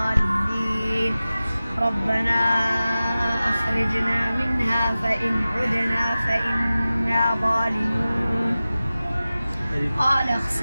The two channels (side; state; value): both; inverted; correlation -0.96